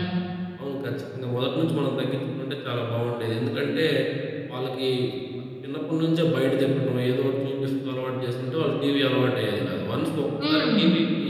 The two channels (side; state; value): both; identical; correlation 1.00